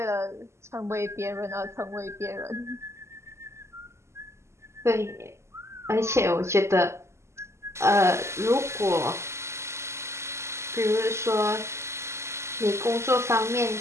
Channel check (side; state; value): left; late; 0.13 ms